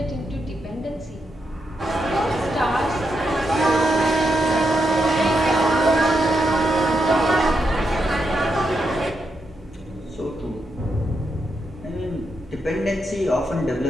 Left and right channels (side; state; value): both; normal; correlation 0.83